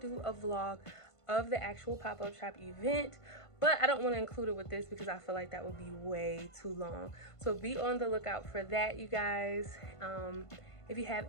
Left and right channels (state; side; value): late; right; 1.5 ms